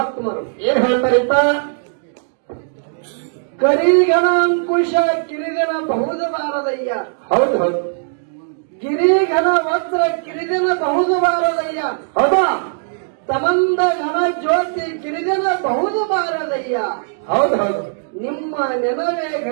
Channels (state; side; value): silent; left; digital silence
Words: ಏನ್ ಹೇಳ್ತಾರಿಪ್ಪ? ಕರಿಗಣ ಅಂಕುಶ ಕಿರಿಗಣ ಬಹುದು ಬಾರದಯ್ಯ. ಹೌದು ಹೌದು. ಗಿರಿಘನ ವಸ್ತ್ರ ಕಿರಿದಿನ ಬಹುದು ಬಾರದಯ್ಯ. ಹೌದಾ? ತಮಂದ ಘನ ಜ್ಯೋತಿ ಕಿರಿದಿನ ಬಹುದು ಬಾರದಯ್ಯ. ಹೌದು ಹೌದು. ನಿಮ್ಮ ನೆನವೇ